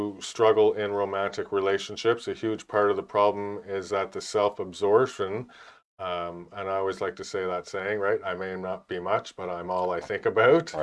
struggle in romantic relationships. A huge part of the problem is that the self-absorption, and I always like to say that saying, right? I may not be much, but I'm all I think about,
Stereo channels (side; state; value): both; identical; correlation 1.00